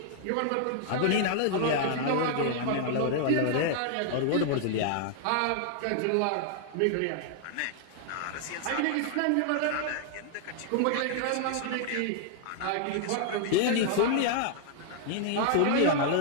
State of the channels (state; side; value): different; both; correlation -0.01